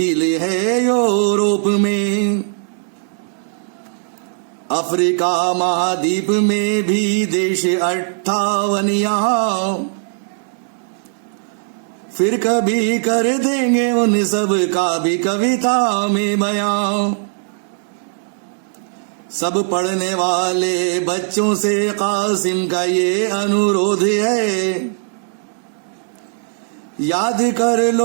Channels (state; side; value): silent; left; digital silence